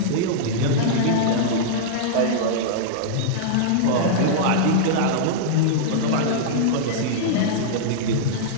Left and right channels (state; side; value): different; both; correlation -0.03